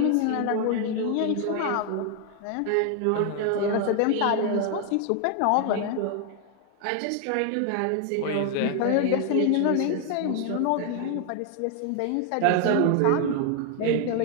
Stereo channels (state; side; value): different; both; correlation 0.00